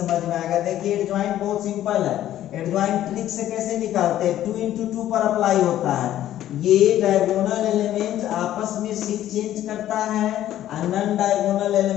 में आएगा। देखिए एडजॉइंट बहुत सिंपल है, एडजॉइंट ट्रिक से कैसे निकालते हैं, 2 × 2 पर अप्लाई होता है, ये डायगोनल एलिमेंट आपस में शिफ्ट चेंज करता है और नॉन डायगोनल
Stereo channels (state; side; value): quieter; right; 12.6 dB